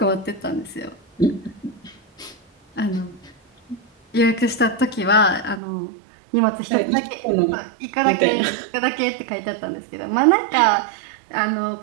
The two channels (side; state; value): left; drops out; at 5.6 s